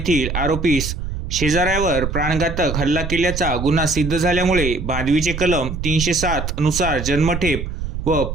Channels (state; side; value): noise; right; rumble, 5 dB below the sound